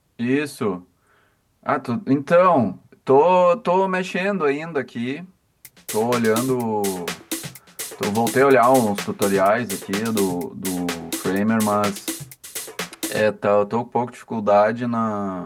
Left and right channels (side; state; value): both; identical; correlation 1.00